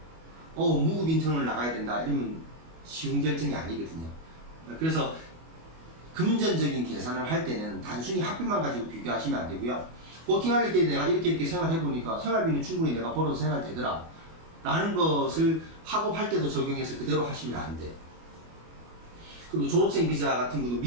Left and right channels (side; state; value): left; late; 25 ms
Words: 무급 인턴을 나가야 된다 이러면 쉬운 결정이 아니거든요. 그래서 금전적인 계산을 할 때는 단순히 학비만 가지고 비교하시면 안 되고요. 워킹할 때 내가 이렇게 생활해보니까 생활비는 충분히 내가 벌어서 생활되더라 라는 것을 학업할 때도 적용해서 그대로 하시면 안 돼. 그리고 졸업생 비자 같은 것도